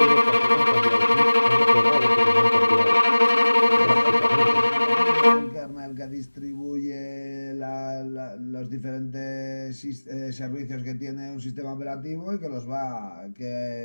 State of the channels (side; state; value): both; inverted; correlation -1.00